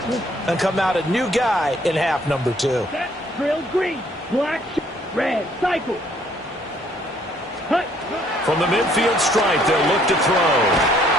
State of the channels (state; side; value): normal; both; correlation 0.63